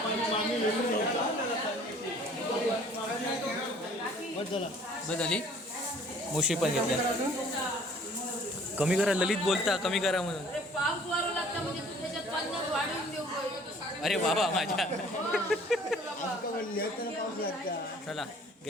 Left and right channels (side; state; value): both; normal; correlation 0.54